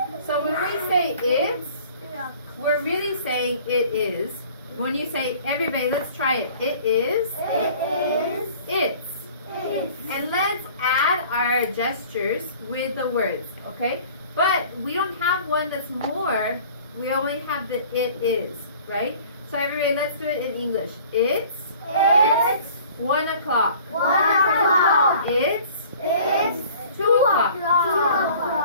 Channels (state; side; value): inverted; both; correlation -0.49